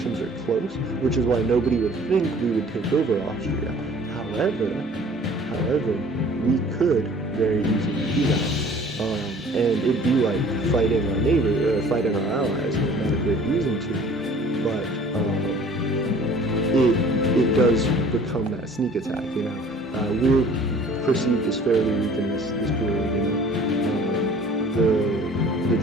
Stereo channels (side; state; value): both; normal; correlation 0.50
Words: are close, which is why nobody would think we would take over Austria. However, we could very easily do that. And it'd be like fighting our neighbor, fighting our allies, and there's not a great reason to. But it does become that sneak attack, you know. We're perceived as fairly weak in this period, you know. The